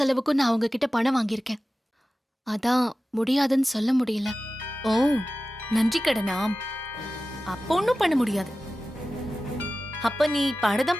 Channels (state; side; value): normal; both; correlation 0.95